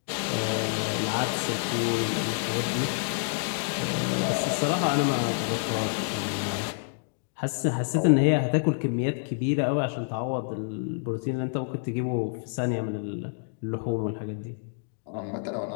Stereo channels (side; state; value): right; silent; digital silence